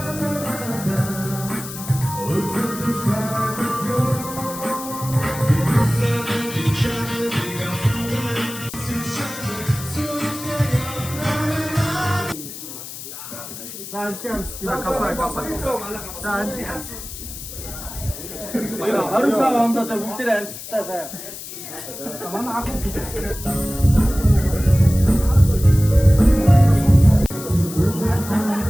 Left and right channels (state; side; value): noise; left; hiss, 11 dB below the sound